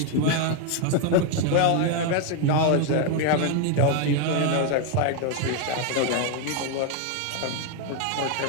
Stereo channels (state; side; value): different; both; correlation 0.01